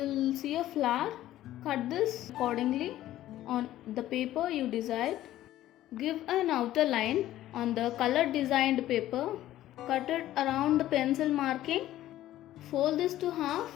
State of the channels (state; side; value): quieter; right; 13.9 dB